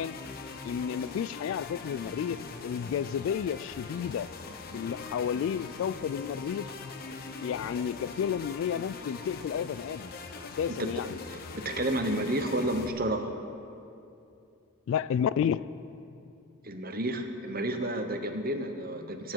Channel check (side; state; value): right; quieter; 4.0 dB